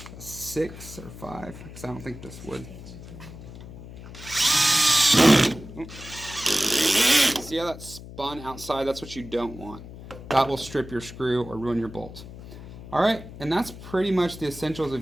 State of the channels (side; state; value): left; noise; hum, 14 dB below the sound